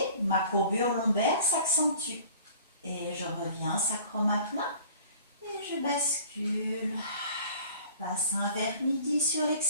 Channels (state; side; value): inverted; both; correlation -0.48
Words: Ma courbure lombaire s'accentue. Et je reviens, sacrum à plat. Et je bascule. Bassin vers midi sur